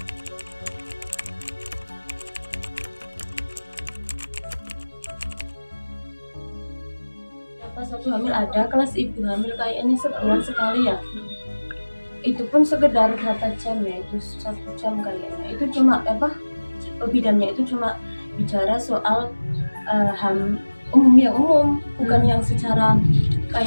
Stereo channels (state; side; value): inverted; both; correlation -1.00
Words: Pas aku hamil ada kelas ibu hamil kayaknya sebulan sekali ya, itu pun sekedar berapa jam ya, itu 1 jam kayaknya. Itu cuma bidannya itu cuma bicara soal umum, bukan yang secara